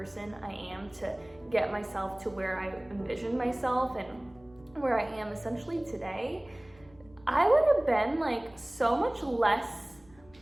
I am, to get myself to where I envisioned myself and where I am essentially today, I would have been like so much less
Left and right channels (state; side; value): noise; left; hum, 27 dB below the sound